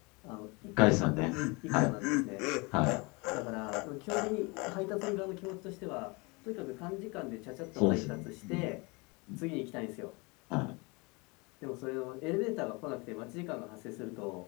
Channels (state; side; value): quieter; right; 27.9 dB